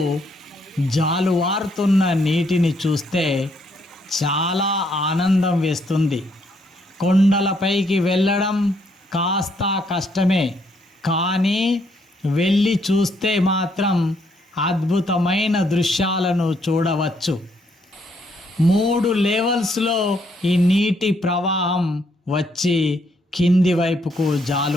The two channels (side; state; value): both; normal; correlation 0.72